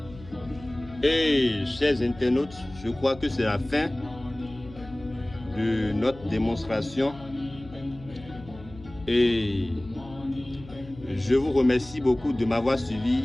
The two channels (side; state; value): left; noise; hum, 18 dB below the sound